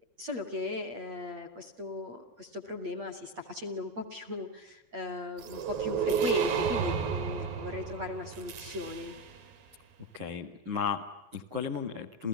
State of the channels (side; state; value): left; late; 8.6 ms